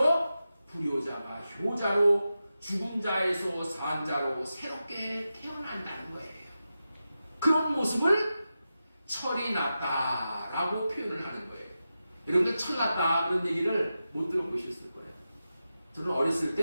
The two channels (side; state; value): both; inverted; correlation -0.91